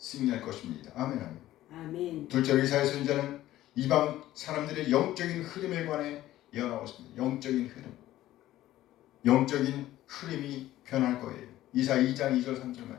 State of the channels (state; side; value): quieter; right; 14.5 dB